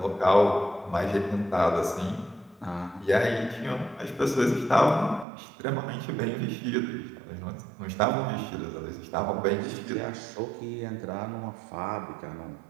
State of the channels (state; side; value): drops out; left; at 5.2 s